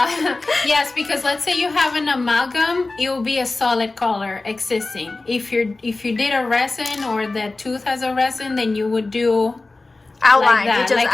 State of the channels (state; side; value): quieter; right; 3.3 dB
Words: yes, because let's say you have an amalgam, it will be a solid color existing. If you did a resin, or the tooth has a resin, then you would do Outline, like that, you just like